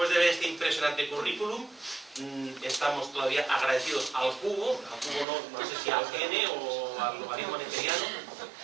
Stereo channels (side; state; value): left; drops out; at 5.2 s